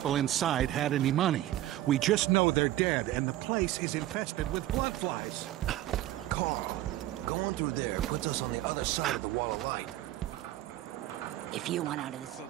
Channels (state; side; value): quieter; left; 14.6 dB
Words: inside had any money. We just know they're dead, and the place is infested with bloodflies. Carl, going through there puts us on the other side of the wall of light. If you want out of the